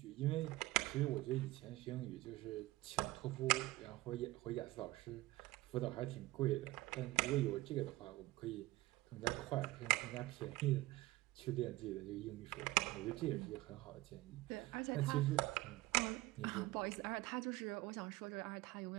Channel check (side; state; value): left; quieter; 18.9 dB